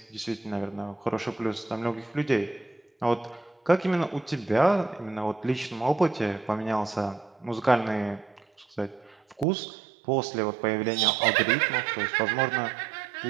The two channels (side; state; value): left; drops out; at 9.5 s